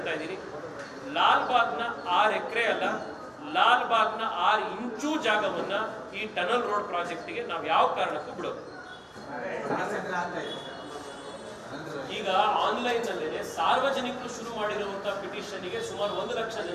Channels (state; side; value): identical; both; correlation 1.00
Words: ಇದ್ದೀನಿ, ಲಾಲ್ಬಾಗ್ನ 6 ಎಕರೆ ಅಲ್ಲ, ಲಾಲ್ಬಾಗ್ನ 6 ಇಂಚು ಜಾಗವನ್ನ ಈ ಟನಲ್ ರೋಡ್ ಪ್ರಾಜೆಕ್ಟ್ಗೆ ನಾವು ಯಾವ ಕಾರಣಕ್ಕೂ ಬಿಡೋದು. ಈಗ ಆನ್ಲೈನ್ ನಲ್ಲೇ ಸಾರ್ವಜನಿಕರು ಶುರು ಮಾಡಿರುವಂತಹ ಪಿಟಿಷನ್ಗೆ ಸುಮಾರು 1 ಲಕ್ಷ